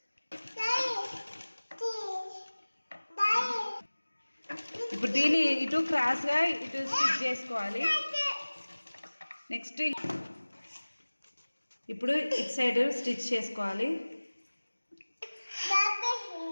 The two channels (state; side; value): inverted; both; correlation -1.00